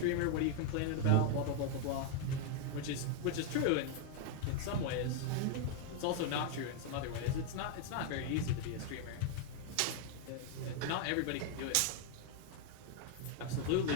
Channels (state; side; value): different; both; correlation 0.00